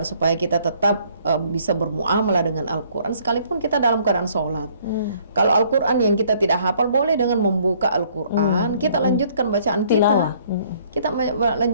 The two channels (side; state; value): both; inverted; correlation -0.62